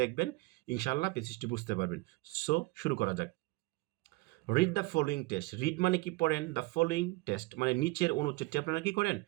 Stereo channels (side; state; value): left; quieter; 22.9 dB